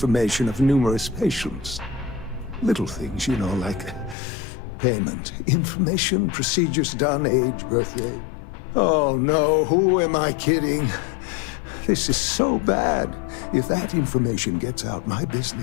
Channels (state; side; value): drops out; right; at 4.2 s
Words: of numerous patients. Little things, you know, like payment, information, procedures done, age, birthday. Oh no, who am I kidding? This is so bad. If that information gets out, my